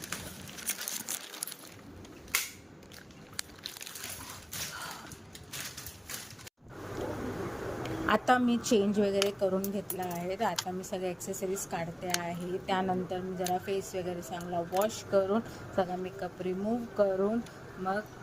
आता मी चेंज वगैरे करून घेतला आहे. तर आता मी सगळे ॲक्सेसरीज काढते आहे. त्यानंतर मी जरा फेस वगैरे चांगला वॉश करून सगळा मेकअप रिमूव्ह करून मग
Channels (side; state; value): both; identical; correlation 1.00